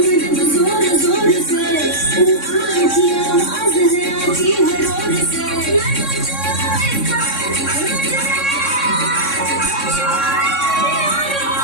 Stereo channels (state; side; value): late; right; 3.6 ms